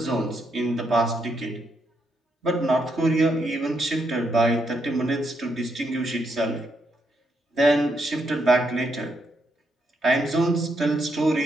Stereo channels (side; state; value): both; normal; correlation 0.78